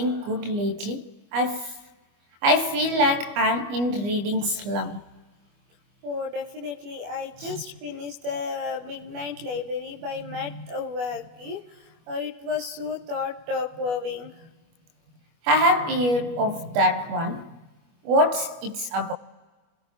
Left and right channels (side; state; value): left; late; 25 ms